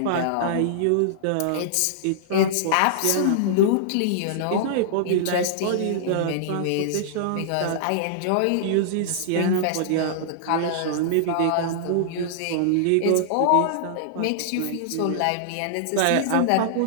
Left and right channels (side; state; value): both; different; correlation -0.01